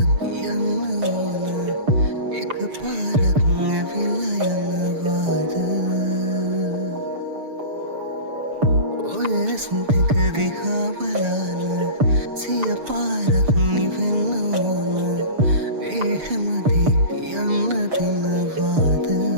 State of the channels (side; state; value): left; late; 6.8 ms